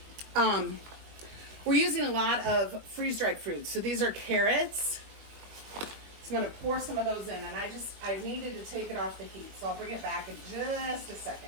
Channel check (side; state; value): left; late; 21 ms